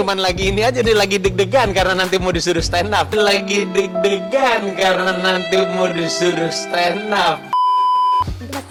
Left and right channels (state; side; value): identical; both; correlation 1.00